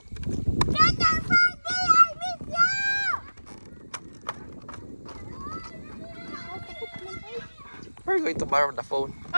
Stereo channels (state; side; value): inverted; both; correlation -1.00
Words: We're going to borrow the phone.